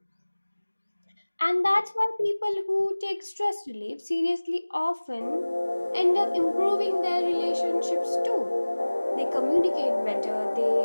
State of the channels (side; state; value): both; inverted; correlation -1.00